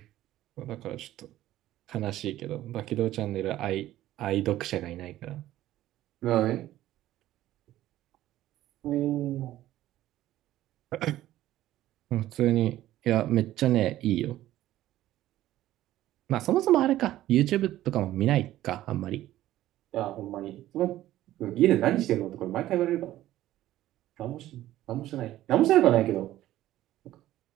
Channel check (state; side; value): quieter; left; 14.2 dB